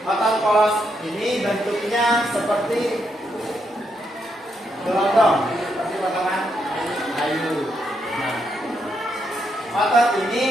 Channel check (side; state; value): both; normal; correlation 0.79